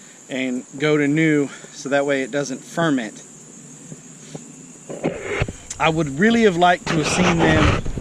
and go to new, so that way it doesn't ferment. I would really have liked to have seen them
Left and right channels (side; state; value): both; identical; correlation 1.00